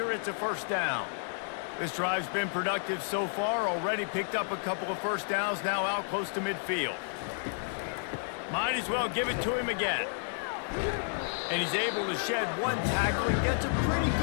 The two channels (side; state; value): right; silent; digital silence